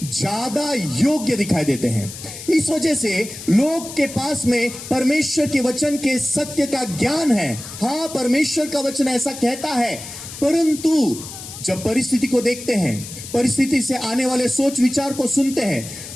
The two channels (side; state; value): left; noise; hiss, 12 dB below the sound